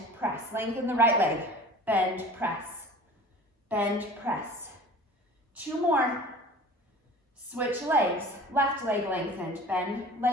press. Lengthen the right leg. Bend, press. Bend, press. 2 more. Switch legs. Left leg lengthened. Bend,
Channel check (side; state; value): both; normal; correlation 0.42